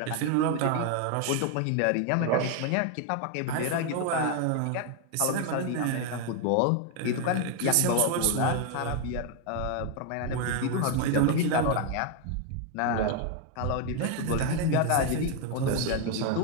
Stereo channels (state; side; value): different; both; correlation 0.01